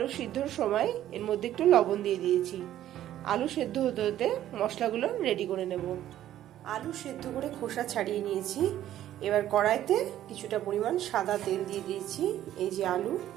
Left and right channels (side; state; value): left; quieter; 12.4 dB